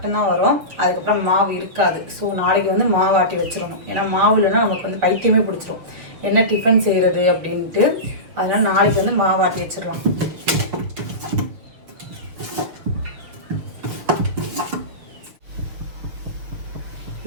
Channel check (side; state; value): left; late; 6.8 ms